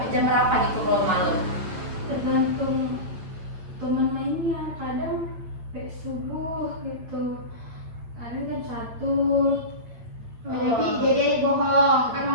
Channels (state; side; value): late; left; 8.8 ms